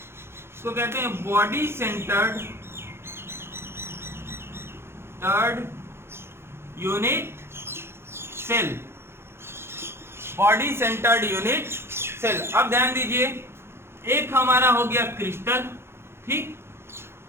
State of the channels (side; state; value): left; late; 0.12 ms